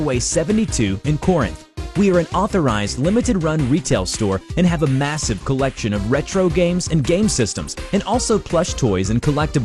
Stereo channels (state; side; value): identical; both; correlation 1.00